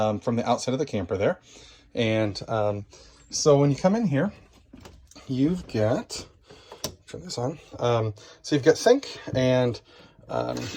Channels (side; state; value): both; identical; correlation 1.00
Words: the outside of the camper there. And so when you come in here, you've got, turn this on, so you've got sink and